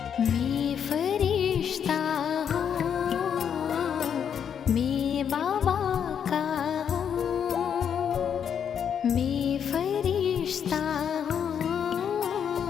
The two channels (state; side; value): quieter; right; 8.0 dB